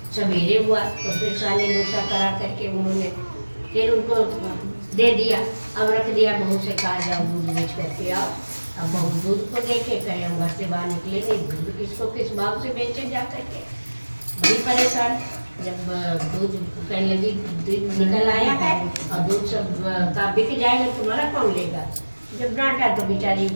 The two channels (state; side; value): inverted; both; correlation -1.00